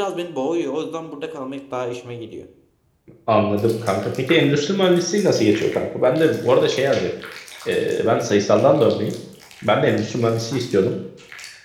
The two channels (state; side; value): identical; both; correlation 1.00